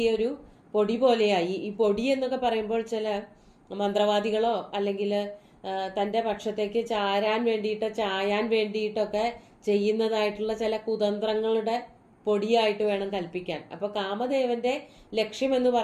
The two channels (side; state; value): both; identical; correlation 1.00